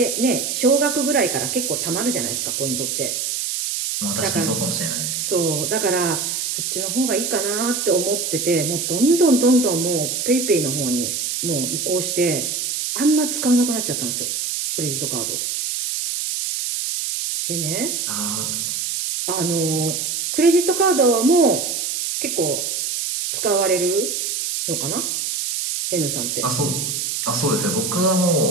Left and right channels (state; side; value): noise; right; hiss, 2 dB below the sound